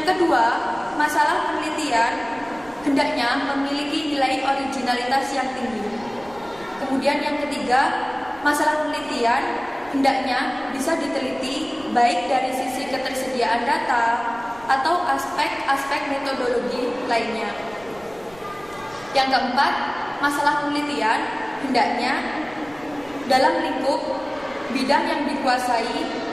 kedua, masalah penelitian hendaknya memiliki nilai originalitas yang tinggi. Kemudian yang ketiga, masalah penelitian hendaknya bisa diteliti baik dari sisi ketersediaan data atau aspek-aspek metodologi lainnya. Yang keempat, masalah penelitian hendaknya dalam lingkup bidang yang dikuasai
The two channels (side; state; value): right; noise; rumble, 23 dB below the sound